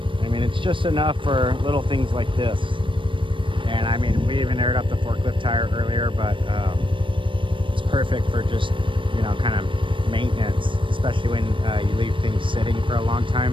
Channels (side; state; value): left; late; 0.25 ms